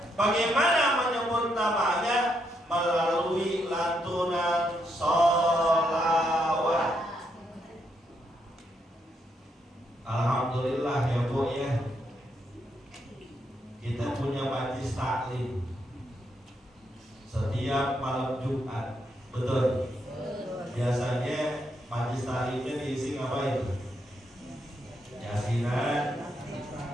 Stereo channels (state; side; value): normal; both; correlation 0.78